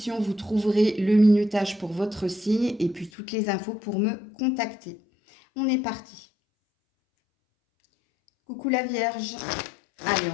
vous trouverez le minutage pour votre signe et puis toutes les infos pour me contacter. On est parti. Coucou la Vierge. Allez,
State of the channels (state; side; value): drops out; right; at 3.1 s